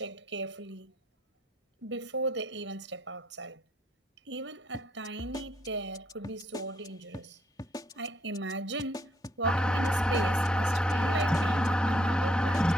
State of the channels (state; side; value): normal; both; correlation 0.70